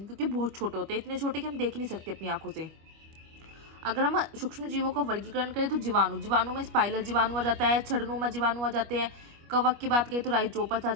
क्योंकि बहुत छोटे होते हैं, इतने छोटे कि हम देख नहीं सकते अपनी आंखों से। अगर हम सूक्ष्म जीवों का वर्गीकरण करें तो जीवाणु में स्पाइरल जीवाणु आ जाता है, छड़नुमा जीवाणु आ जाते हैं। कवक की बात करें तो राइजोपस आ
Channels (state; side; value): late; left; 25 ms